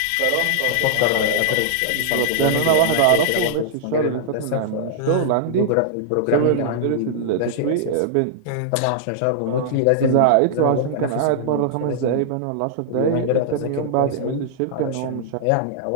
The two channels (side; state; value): both; different; correlation -0.01